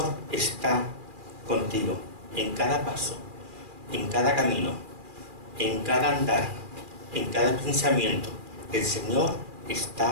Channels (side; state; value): left; late; 2.4 ms